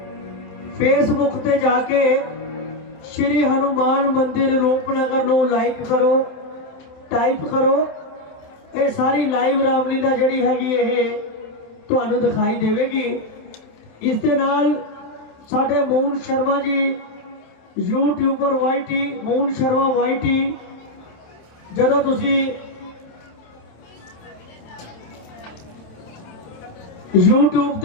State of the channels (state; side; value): late; right; 27 ms